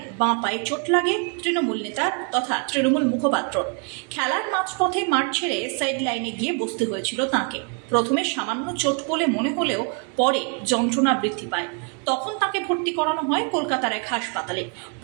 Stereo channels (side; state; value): left; quieter; 38.2 dB